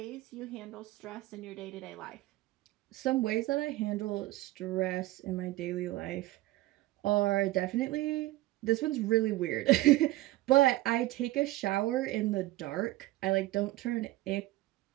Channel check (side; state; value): left; quieter; 17.6 dB